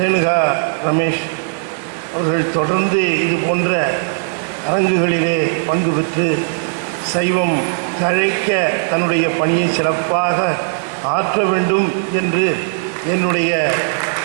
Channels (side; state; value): left; silent; 59 dB below the other